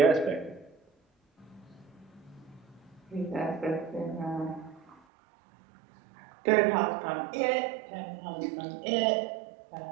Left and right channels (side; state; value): left; drops out; at 5.0 s